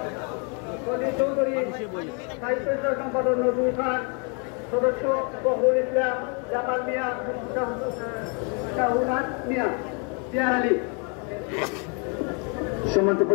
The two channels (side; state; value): right; quieter; 36.5 dB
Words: সলিল চৌধুরী, সাহিত্য সম্পাদক নজরুল খান, সদস্য বহরুল ইসলাম, জামাল মিয়া, শাহুনাথ মিয়া, জিয়া আলী। সম্মানিত